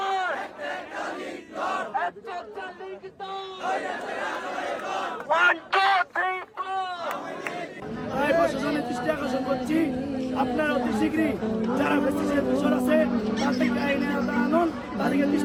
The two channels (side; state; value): both; identical; correlation 1.00